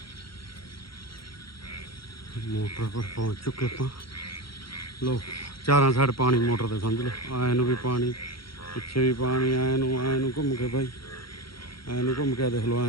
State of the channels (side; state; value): right; late; 0.74 ms